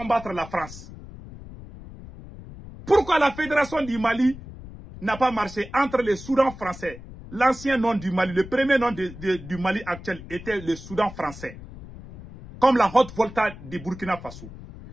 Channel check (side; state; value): left; noise; rumble, 15 dB below the sound